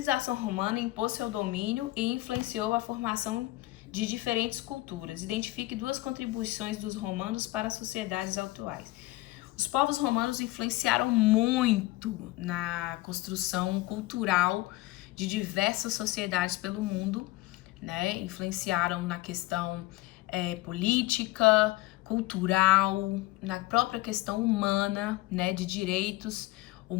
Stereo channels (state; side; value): quieter; right; 19.2 dB